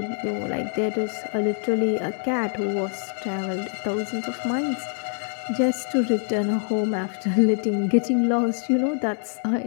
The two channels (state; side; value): silent; right; 62 dB below the other